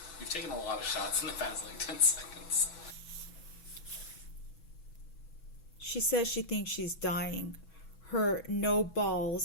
You've taken a lot of shots in the past, like, 10 seconds. She says she thinks she's dying. Her no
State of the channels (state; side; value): late; right; 6.1 ms